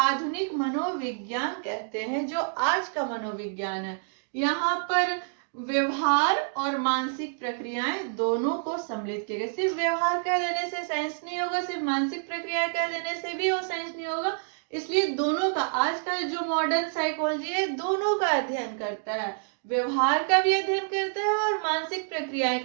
मनोविज्ञान कहते हैं, जो आज का मनोविज्ञान है। यहाँ पर व्यवहार और मानसिक प्रक्रियाएं दोनों को सम्मिलित किया गया। सिर्फ व्यवहार कह देने से साइंस नहीं होगा, सिर्फ मानसिक प्रक्रियाएं कह देने से भी वो साइंस नहीं होगा। इसलिए दोनों का, आज का जो मॉडर्न साइकोलॉजी है, दोनों का अध्ययन करता है, व्यवहार का भी अध्ययन करता है और मानसिक प्रक्रियाएं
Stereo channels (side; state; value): left; silent; digital silence